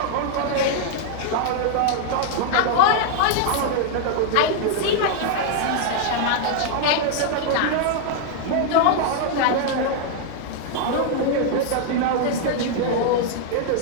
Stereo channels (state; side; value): different; both; correlation -0.01